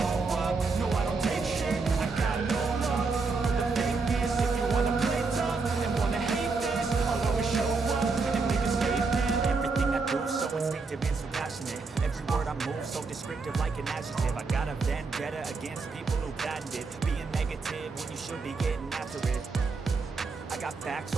up, no, I don't take shit, I got no love for the fakeness. If you wanna play tough and wanna hate this, I'll always show up and make a statement. Everything I do so instinctive and so passionate. Every word I move so descriptive like an adjective. I got a vendetta against people who patented being negative when you should be getting after it. I got facts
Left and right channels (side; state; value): left; quieter; 4.3 dB